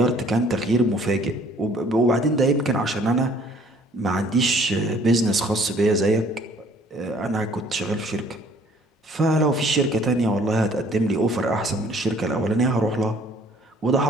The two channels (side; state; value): both; normal; correlation 0.57